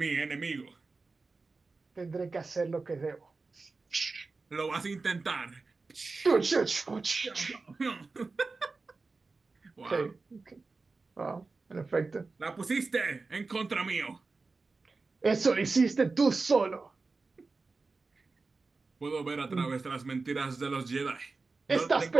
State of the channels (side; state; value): left; quieter; 3.9 dB